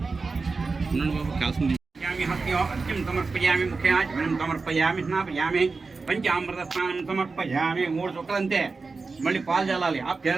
బాబు కాల్సింది. హస్త్యం సమర్పయామి ముఖ్యాచమనం సమర్పయామి స్నాపయామి పంచామృత స్నానం సమర్పయామి. 3 చుక్కలు అంతే. మళ్ళీ పాలు చల్లాలి.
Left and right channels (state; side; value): quieter; left; 4.2 dB